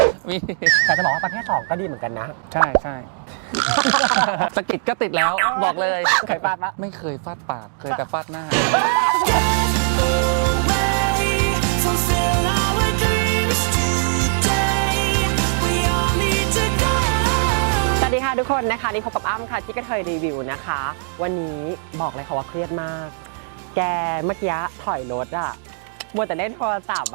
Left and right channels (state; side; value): silent; left; digital silence